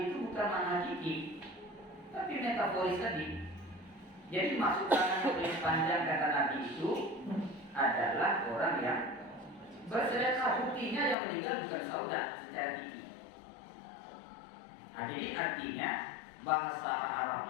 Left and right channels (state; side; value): drops out; right; at 11.2 s